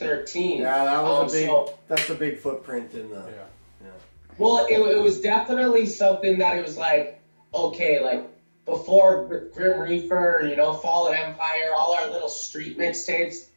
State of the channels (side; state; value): both; inverted; correlation -1.00